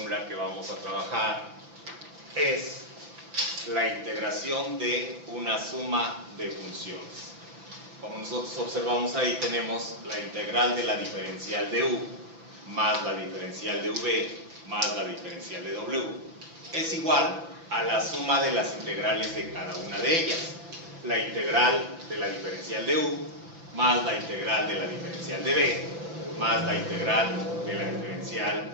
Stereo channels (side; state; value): left; late; 6.0 ms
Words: que vamos a trabajar es la integración de una suma de funciones. Como nosotros observamos ahí, tenemos la integral de la diferencial de u más la diferencial de v más la diferencial de w es igual a la suma de las integrales de cada una de ellas. La integral de la diferencial de u más la integral de la diferencial de v más la integral de la diferencial